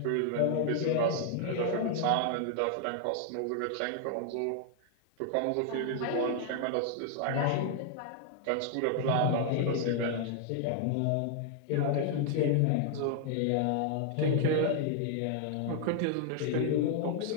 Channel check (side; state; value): both; different; correlation 0.00